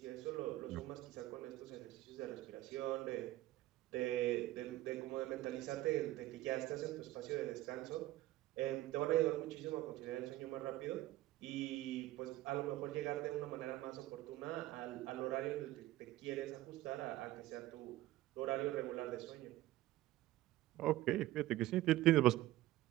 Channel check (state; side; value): quieter; left; 16.1 dB